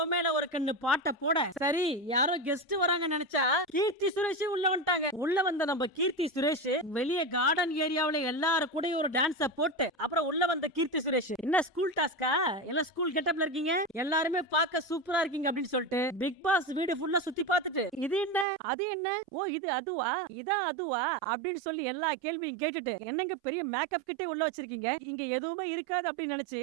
மேல ஒரு கண்ணு பாட்டை போட, சரி யாரோ கெஸ்ட் வராங்க நினைச்சா கீர்த்தி சுரேஷ் உள்ள வந்துட்டாங்க. உள்ள வந்த நம்ம கீர்த்தி சுரேஷ் வெளியே கார்டன் ஏரியாவுல எல்லாரும் கூட ஒரு டான்ஸ போட்டு, அப்புறம் உள்ள வந்த கீர்த்தி சுரேஷ், என்ன ஸ்கூல் டாஸ்கா, எல்லாம் ஸ்கூல் கெட்டப்ல இருக்கீங்க, எல்லாருமே பார்க்க சூப்பரா இருக்கீங்க அப்படின்னு சொல்லிட்டு பிக் பாஸ் வீடு ஃபுல்லா சுத்தி பார்த்துட்டு, இது என்ன அது என்ன, ஓ இது அதுவா, இதான் அதுவா அப்படின்னு சொல்லி எல்லா கேள்வியும் கேட்டுட்டு என்னங்க பெரிய மேக்கப் கிட்டே உள்ள வச்சிருக்கீங்க, இங்க எதுவுமே இருக்காது அப்படின்னு நினைச்சு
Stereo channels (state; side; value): drops out; left; at 18.4 s